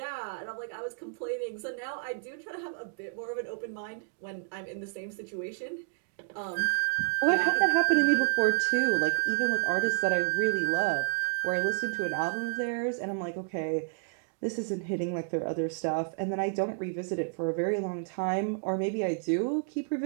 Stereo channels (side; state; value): left; silent; digital silence